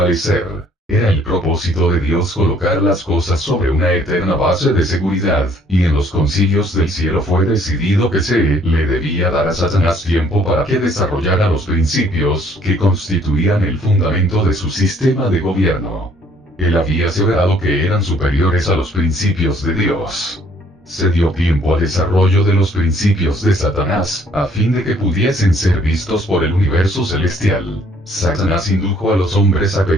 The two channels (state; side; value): normal; both; correlation 0.62